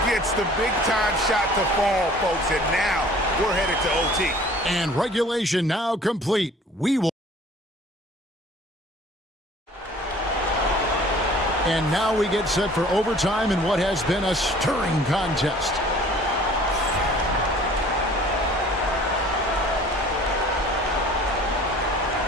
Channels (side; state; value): both; normal; correlation 0.50